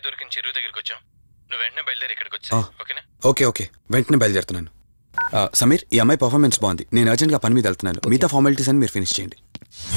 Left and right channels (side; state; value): both; inverted; correlation -1.00